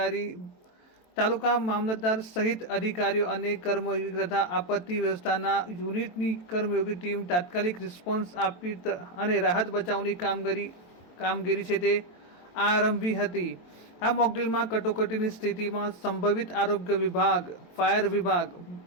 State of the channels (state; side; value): late; right; 23 ms